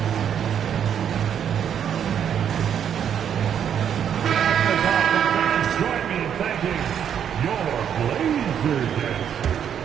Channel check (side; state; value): left; quieter; 8.7 dB